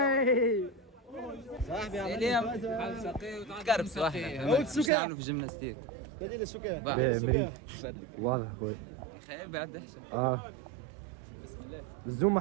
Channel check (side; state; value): left; drops out; at 4.9 s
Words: صاحبي اليوم قرب صاحبي مش نعملوا في جيمناستيك. بديل السكر. واضح خويا. خير بعد احسن. بسم الله. الزوم ما